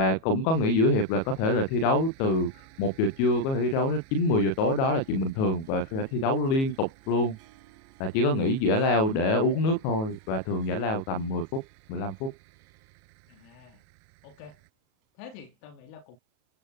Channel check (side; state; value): right; late; 37 ms